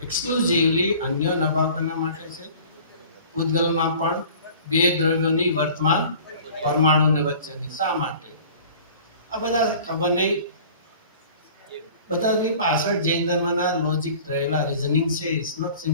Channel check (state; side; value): inverted; both; correlation -0.46